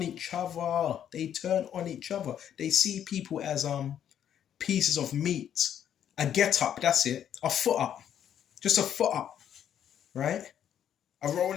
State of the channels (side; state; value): right; quieter; 9.7 dB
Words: each other. They turn on each other. They see people as pieces of meat. A get up, that's it. A foot up. Just a foot up. Right? A